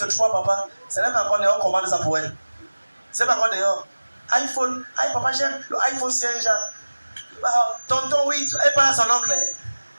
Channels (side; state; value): both; inverted; correlation -1.00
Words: papa. C'est même pas encore dehors, on commande ça pour elle. C'est pas encore dehors. iPhone, papa, j'aime le iPhone 5, tonton, oui, elle parle à son oncle.